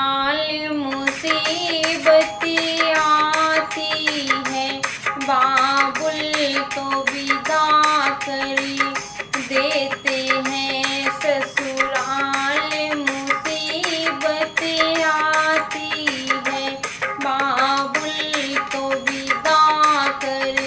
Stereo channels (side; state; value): both; identical; correlation 1.00